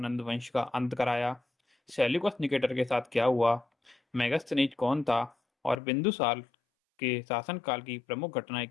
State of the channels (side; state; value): right; drops out; at 5.8 s